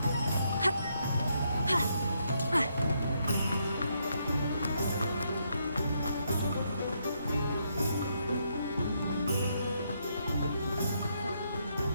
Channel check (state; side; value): inverted; both; correlation -0.76